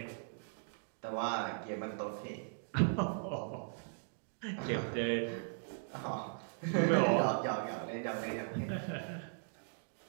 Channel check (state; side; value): silent; left; digital silence